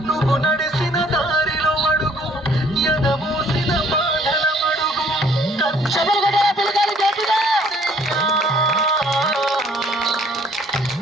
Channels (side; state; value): both; normal; correlation 0.60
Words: నువ్వు నడిసిన దారిలో అడుగు, ఎదమూసిన బాధల అడుగు.